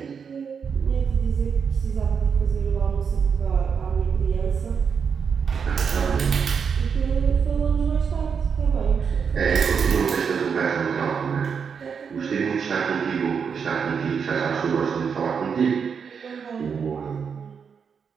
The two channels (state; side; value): quieter; left; 6.4 dB